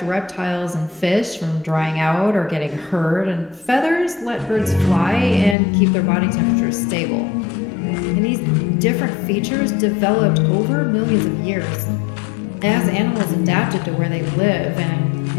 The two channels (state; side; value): drops out; right; at 5.6 s